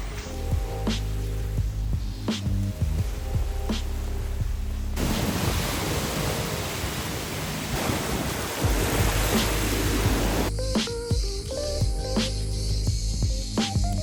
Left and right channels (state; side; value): identical; both; correlation 1.00